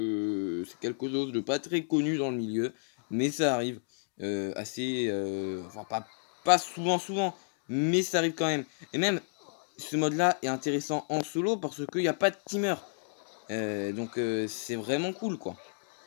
c'est quelque chose de pas très connu dans le milieu, mais ça arrive assez, enfin pas souvent, mais ça arrive quand même. Et même, ce mode-là est intéressant en solo, parce qu'il n'y a pas de teamer. Donc c'est vraiment cool, quoi.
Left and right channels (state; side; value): silent; right; digital silence